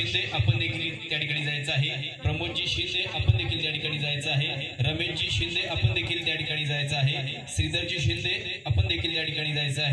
आपण देखील त्या ठिकाणी जायचं आहे, प्रमोदजी शिंदे आपण देखील त्या ठिकाणी जायचं आहे, रमेशजी शिंदे आपण देखील त्या ठिकाणी जायचं आहे, श्रीधरजी शिंदे आपण देखील त्या ठिकाणी जायचं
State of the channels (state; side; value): identical; both; correlation 1.00